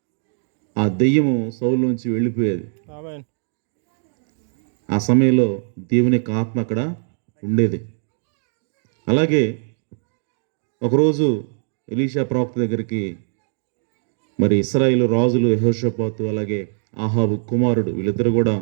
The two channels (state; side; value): silent; left; 65 dB below the other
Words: ఆ దెయ్యము సౌలులోంచి వెళ్ళిపోయేది. ఆ సమయంలో దేవుని యొక్క ఆత్మ అక్కడ ఉండేది. అలాగే ఒకరోజు ఎలీషా ప్రవక్త దగ్గరికి మరి ఇశ్రాయేలు రాజులు యెహోషాపాతు అలాగే ఆహాబు కుమారుడు వీళ్ళిద్దరు కూడా